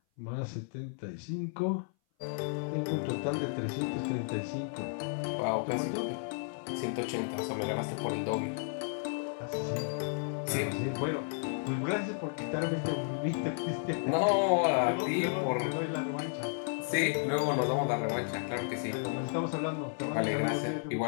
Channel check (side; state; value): right; silent; 56 dB below the other